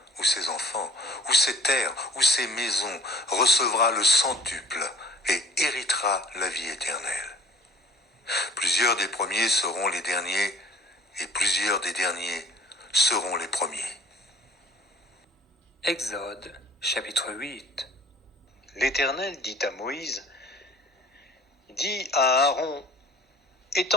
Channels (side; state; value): both; normal; correlation 0.49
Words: ou ses enfants, ou ses terres, ou ses maisons, recevra le centuple et héritera la vie éternelle. Plusieurs des premiers seront les derniers, et plusieurs des derniers seront les premiers. » Exode, chapitre 8. L'Éternel dit à Moïse, « Dis à Aaron,